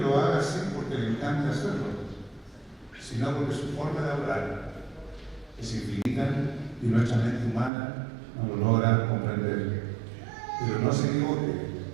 haga así porque le encanta hacerlo, sino porque su forma de obrar es infinita y nuestra mente humana no lo logra comprender. Pero no se equivoque,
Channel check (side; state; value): left; drops out; at 7.7 s